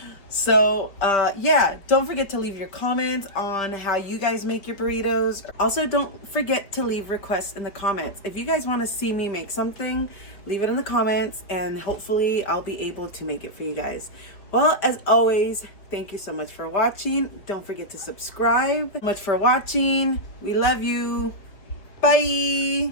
So, yeah, don't forget to leave your comments on how you guys make your burritos. Also, don't forget to leave requests in the comments. If you guys want to see me make something, leave it in the comments, and hopefully I'll be able to make it for you guys. Well, as always, thank you so much for watching. Don't forget to subscribe. Much for watching. We love you. Bye.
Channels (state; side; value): late; right; 5.2 ms